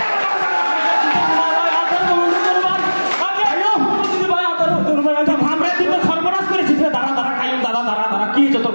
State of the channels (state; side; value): inverted; both; correlation -1.00